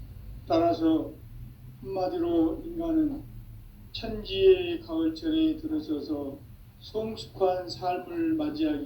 따라서 한마디로 인간은 천지의 가을철에 들어서서 성숙한 삶을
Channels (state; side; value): identical; both; correlation 1.00